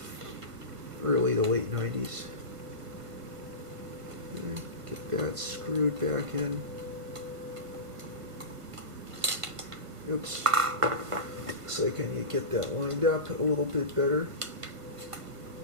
Early to late 90s. Get that screwed back in. Oops. Looks like I need to get that lined up a little bit better.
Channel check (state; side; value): late; left; 1.5 ms